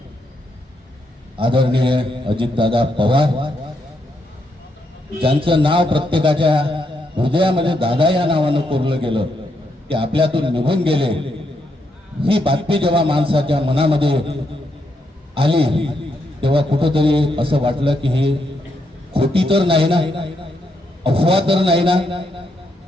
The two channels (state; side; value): normal; both; correlation 0.79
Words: आदरणीय अजितदादा पवार, ज्यांचं नाव प्रत्येकाच्या हृदयामध्ये दादा या नावानं कोरलं गेलं, ते आपल्यातून निघून गेले. ही बातमी जेव्हा माणसाच्या मनामध्ये आली तेव्हा कुठंतरी असं वाटलं की ही खोटी तर नाही ना, अफवा तर नाही ना.